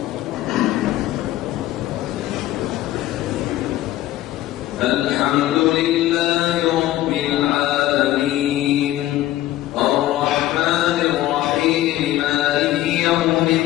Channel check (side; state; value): right; quieter; 14.8 dB